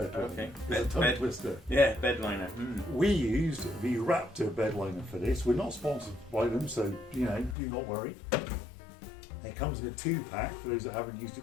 liner. Okay. It's a tongue twister. Yeah, bed liner. We used the Raptor bed liner for this. We're not sponsored by them, so do not worry. It comes in a 2-pack for those that haven't used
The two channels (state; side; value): drops out; right; at 7.6 s